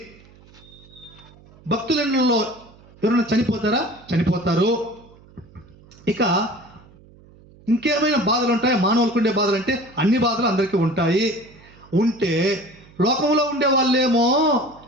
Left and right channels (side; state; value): right; noise; hum, 25 dB below the sound